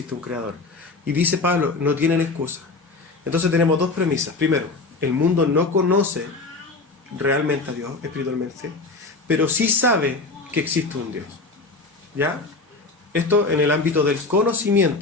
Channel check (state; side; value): quieter; right; 3.7 dB